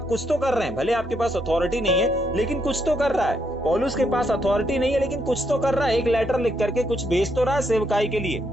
कुछ तो कर रहे हैं, भले आपके पास अथॉरिटी नहीं है, लेकिन कुछ तो कर रहा है। पौलुस के पास अथॉरिटी नहीं है, लेकिन कुछ तो कर रहा है, एक लेटर लिख करके कुछ भेज तो रहा है सेवकाई के लिए।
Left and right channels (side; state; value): both; normal; correlation 0.76